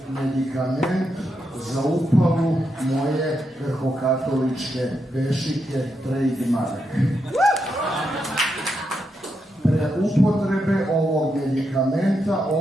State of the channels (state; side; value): normal; both; correlation 0.83